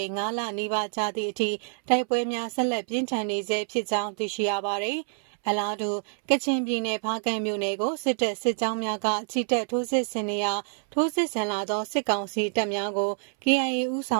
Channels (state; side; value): silent; left; 60 dB below the other